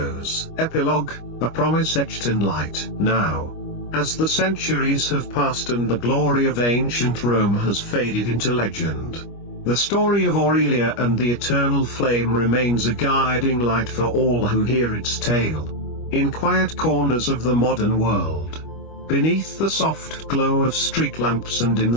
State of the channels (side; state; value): right; late; 25 ms